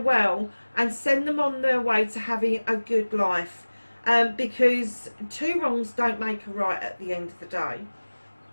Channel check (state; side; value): inverted; both; correlation -1.00